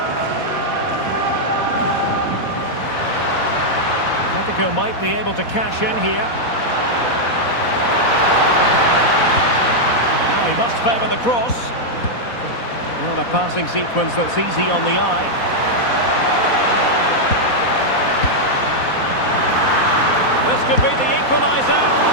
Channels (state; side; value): late; right; 4.1 ms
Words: Atletico might be able to cash in here. Now he must favour the cross. Well, a passing sequence that's easy on the eye. This could be the equaliser.